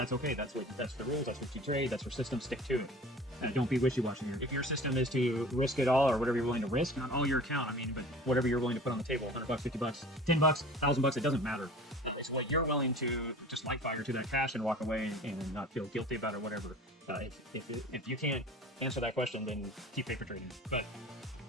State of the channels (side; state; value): both; normal; correlation 0.42